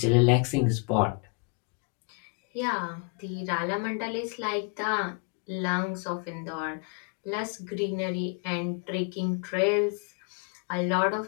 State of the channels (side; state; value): right; quieter; 35.9 dB